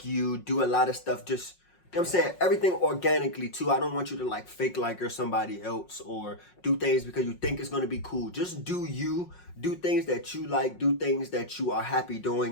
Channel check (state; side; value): late; right; 5.5 ms